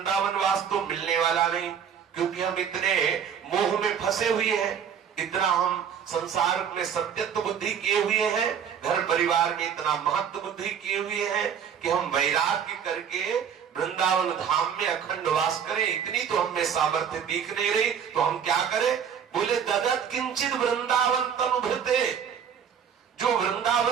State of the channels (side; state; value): left; quieter; 7.8 dB